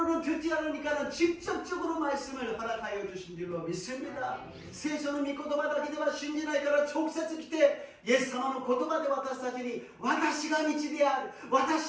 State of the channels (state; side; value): identical; both; correlation 1.00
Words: 듣지 않으니까는 직접적으로 말씀을 허락하여 주신 줄로 믿습니다. 聖書の御言葉だけでは信じないから直接来て、イエス様の言葉で私たちに、私が道である、